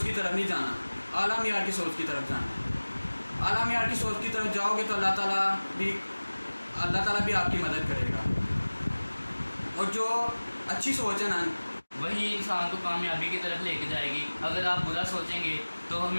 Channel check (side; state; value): both; inverted; correlation -1.00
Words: की तरफ नहीं जाना, आला मियार की सोच की तरफ जाना। आला मियार की सोच की तरफ जाओगे तो अल्लाह ताला भी आपकी मदद करेगा। और जो अच्छी सोच है ना, वही इंसान को कामयाबी की तरफ लेके जाएगी। अगर आप बुरा सोचेंगे तो